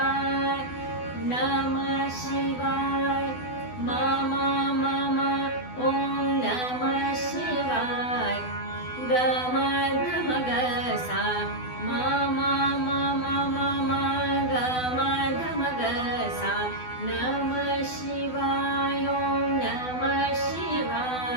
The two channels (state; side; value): late; right; 12 ms